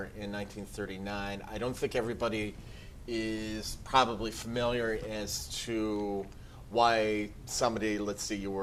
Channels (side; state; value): both; identical; correlation 1.00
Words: in 1939. I don't think everybody is probably familiar as to why somebody, let's see, you